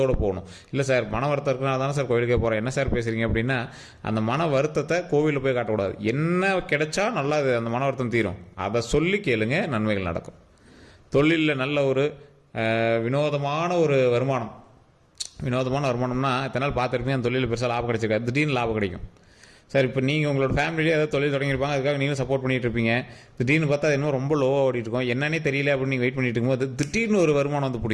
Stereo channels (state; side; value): identical; both; correlation 1.00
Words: போகணும். இல்லை சார் மன வருத்தம் இருக்குன்னா தானே சார் கோயிலுக்கே போகிறேன், என்ன சார் பேசுகிறீங்க அப்படின்னா அந்த மன வருத்தத்தை கோவிலில் போய் காட்டக்கூடாது. என்ன கிடைச்சா நல்லா அந்த மன வருத்தம் தீரும், அதை சொல்லி கேளுங்க, நன்மைகள் நடக்கும். தொழிலில் நல்ல ஒரு வினோதமான ஒரு வருமானம்னா இத்தனை நாள் பார்த்துருப்பீங்க அந்த தொழிலில் பெருசாக லாபம் கிடைச்சிருக்காது, திடீர்னு லாபம் கிடைக்கும். சார் இப்போ நீங்கள் உங்களோட ஃபேமிலியே ஏதாவது தொழில் தொடங்கியிருப்பாங்க, அதுக்காக நீங்களும் சப்போர்ட் பண்ணிகிட்டு இருப்பீங்க. திடீர்னு பார்த்தா அது இன்னும் ரொம்ப லோவாக ஓடிட்டு இருக்கும், என்னன்னே தெரியல அப்படின்னு நீங்கள் வெயிட் பண்ணிட்டு இருக்கும்போது திடீர்னு ஒரு வருமானம் வந்து